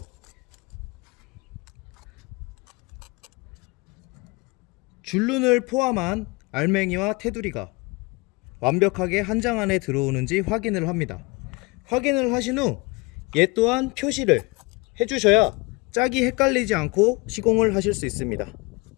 줄눈을 포함한 알맹이와 테두리가 완벽하게 한 장 안에 들어오는지 확인을 합니다. 확인을 하신 후 얘 또한 표시를 해주셔야 짝이 헷갈리지 않고 시공을 하실 수 있습니다.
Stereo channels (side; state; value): right; quieter; 26.3 dB